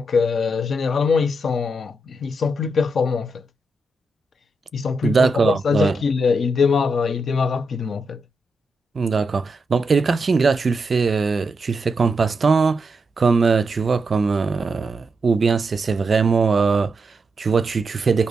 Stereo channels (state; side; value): normal; both; correlation 0.84